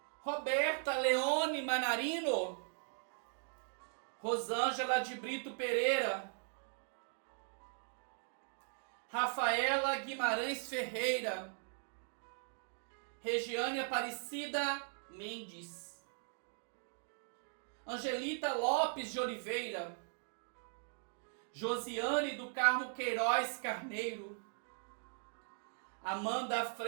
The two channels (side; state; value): left; silent; 51 dB below the other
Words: Roberta Leone Manarino. Rosângela de Brito Pereira. Rafaela Guimarães Ferreira. Regiane Aparecida Mendes. Angelita Lopes de Oliveira. Josiane do Carmo Queiroz Carneiro. Amanda